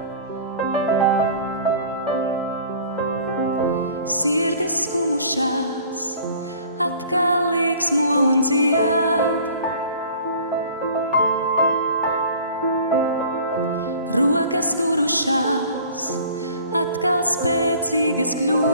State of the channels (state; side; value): inverted; both; correlation -0.47